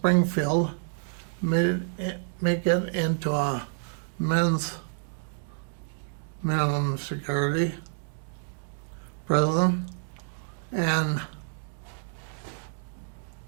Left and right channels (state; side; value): silent; left; digital silence